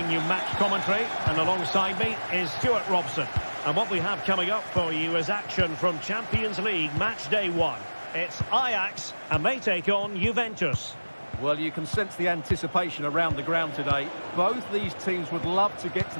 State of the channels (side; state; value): both; inverted; correlation -1.00